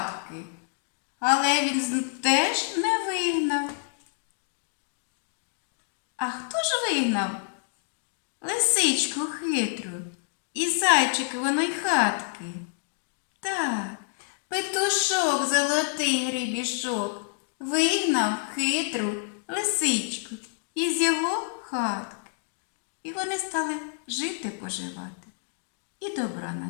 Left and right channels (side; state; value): right; silent; digital silence